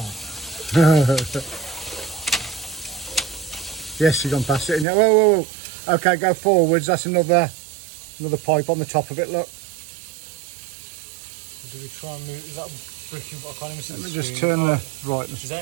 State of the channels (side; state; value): left; drops out; at 4.9 s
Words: Yes, you've gone past it. Whoa, whoa, whoa. Okay, go forwards. That's another pipe on the top of it. Look. Do we try and move? Is that bricking? I can't even see the Let me screen. just turn the right. Is that